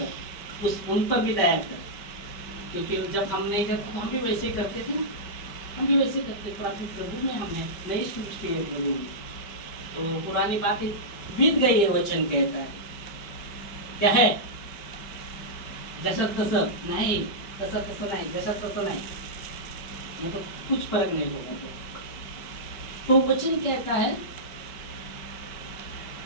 उन पर भी दया कर। क्योंकि जब हम नहीं करते तो हम भी वैसे करते थे ना, हम भी वैसे करते। प्रभु में हम है, नई सृष्टि है प्रभु में। तो पुरानी बातें बीत गई है, वचन कहता है। क्या है? जसं तसं नहीं, तसं तसं नहीं, जसं तसं नहीं, मतलब कुछ फर्क नहीं होगा। तो वचन कहता है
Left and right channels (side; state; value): right; late; 5.0 ms